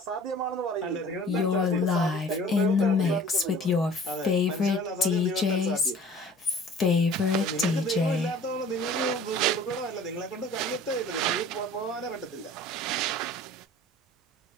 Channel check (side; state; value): both; normal; correlation 0.47